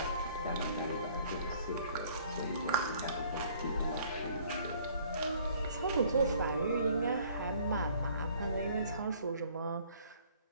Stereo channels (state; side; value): inverted; both; correlation -0.58